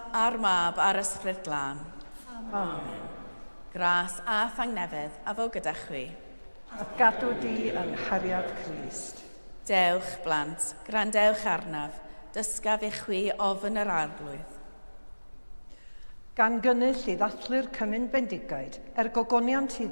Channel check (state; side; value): inverted; both; correlation -1.00